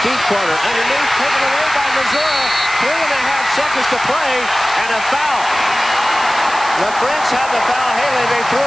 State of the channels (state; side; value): noise; right; hiss, 14 dB below the sound